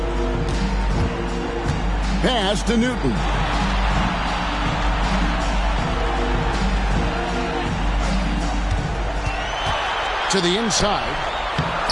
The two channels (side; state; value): both; identical; correlation 1.00